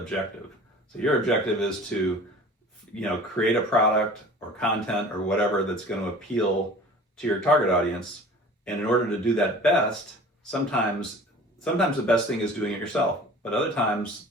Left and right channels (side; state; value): both; normal; correlation 0.44